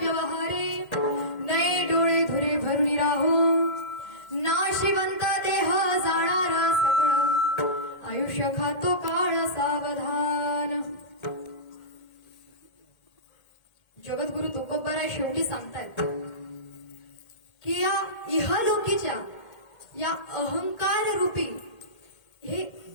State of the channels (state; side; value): late; right; 1.8 ms